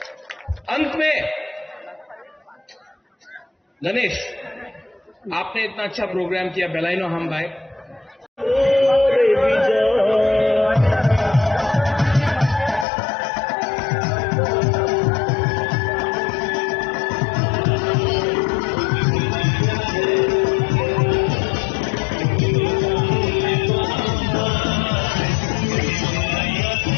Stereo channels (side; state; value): right; drops out; at 12.9 s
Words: अंत में गणेश, आपने इतना अच्छा प्रोग्राम किया, बेलाइनो हम भाई।